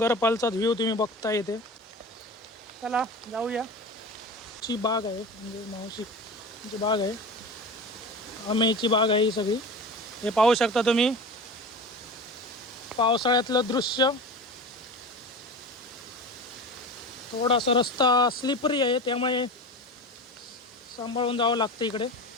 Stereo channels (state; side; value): normal; both; correlation 0.30